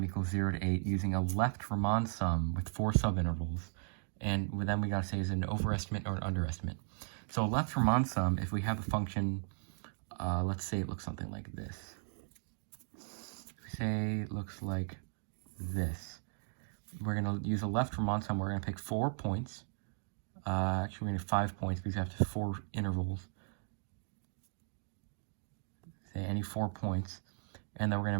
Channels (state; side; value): silent; left; digital silence